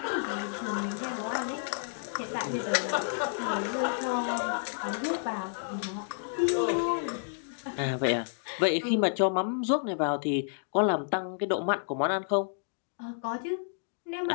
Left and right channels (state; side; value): silent; right; digital silence